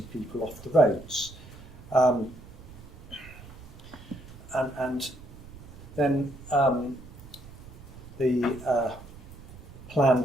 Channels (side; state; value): right; noise; rumble, 18 dB below the sound